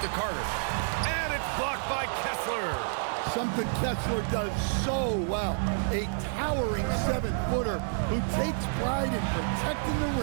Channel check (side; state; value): left; silent; digital silence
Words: to Carter. And it's blocked by Kessler. Something Kessler does so well. A towering 7-footer who takes pride in protecting the